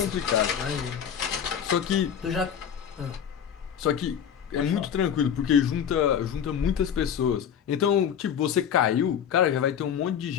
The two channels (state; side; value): quieter; right; 8.4 dB